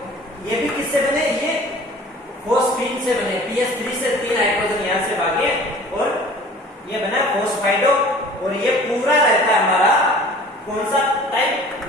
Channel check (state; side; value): normal; both; correlation 0.47